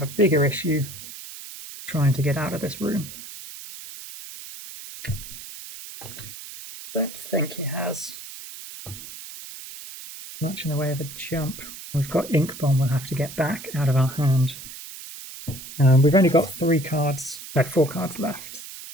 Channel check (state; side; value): noise; right; hiss, 13 dB below the sound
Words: a bigger issue trying to get out of this room. Don't think he has much in the way of a jump. We've got Ink Bomb we'll have to get back out of our hand. We've only got 4 cards left.